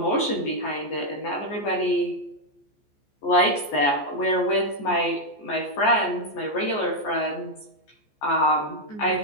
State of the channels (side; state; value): right; late; 14 ms